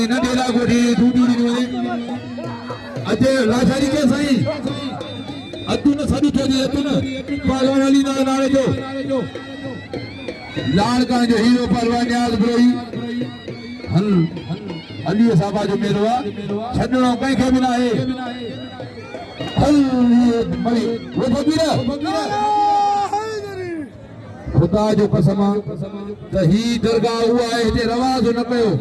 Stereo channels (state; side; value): identical; both; correlation 1.00